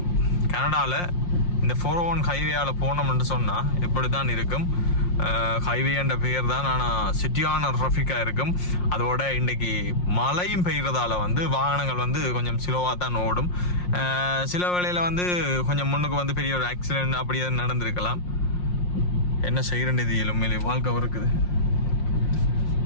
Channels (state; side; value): late; right; 5.6 ms